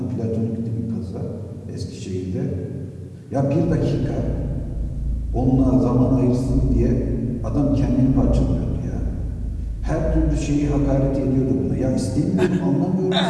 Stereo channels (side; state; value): both; identical; correlation 1.00